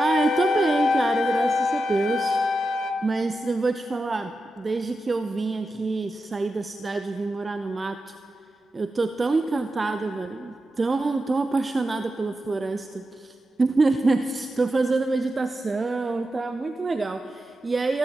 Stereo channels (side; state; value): both; normal; correlation 0.90